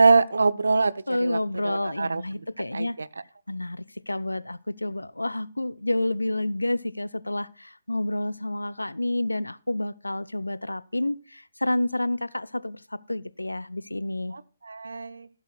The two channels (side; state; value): both; inverted; correlation -0.95